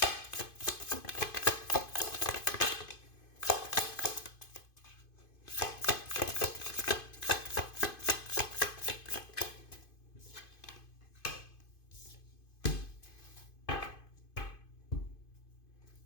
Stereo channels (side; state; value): right; late; 2.5 ms